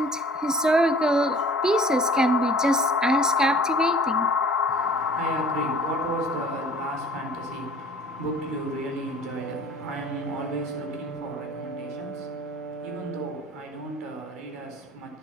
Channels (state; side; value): normal; both; correlation 0.49